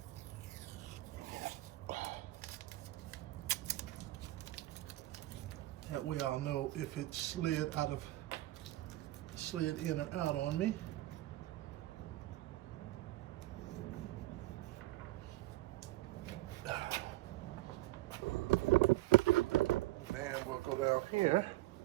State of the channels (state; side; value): quieter; left; 17.7 dB